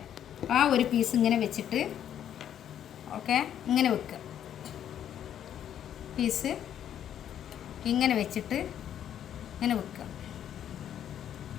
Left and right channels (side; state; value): right; quieter; 10.0 dB